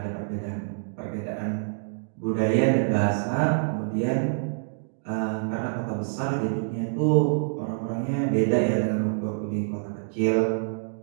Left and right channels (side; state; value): left; silent; digital silence